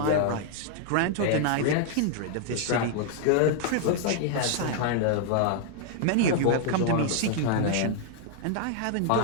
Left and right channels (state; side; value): different; both; correlation 0.00